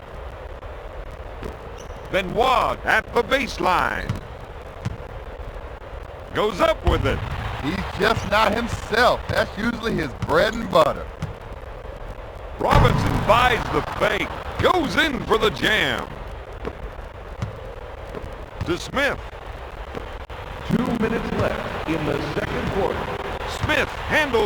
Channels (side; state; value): both; identical; correlation 1.00